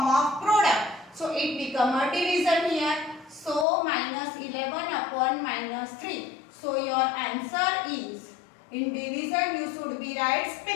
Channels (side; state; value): right; drops out; at 3.7 s